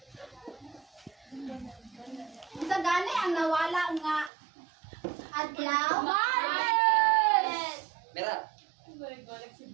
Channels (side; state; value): left; drops out; at 4.3 s